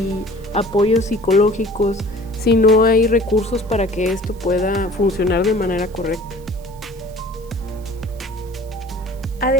apoyos psicológicos si no hay recursos para que esto pueda funcionar de manera correcta.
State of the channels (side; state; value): right; noise; hiss, 26 dB below the sound